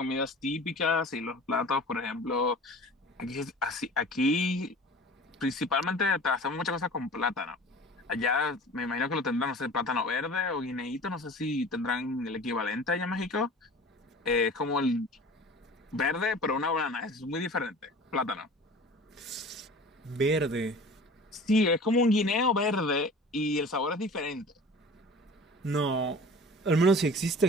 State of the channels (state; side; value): normal; both; correlation 0.41